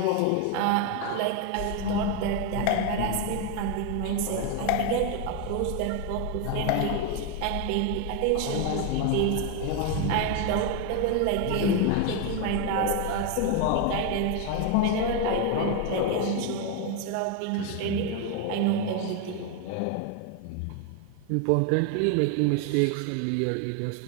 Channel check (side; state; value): both; different; correlation 0.01